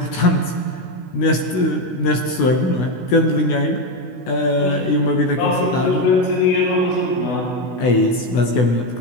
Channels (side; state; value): right; late; 16 ms